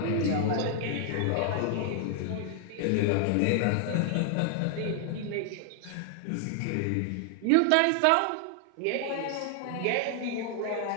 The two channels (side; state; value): both; different; correlation 0.00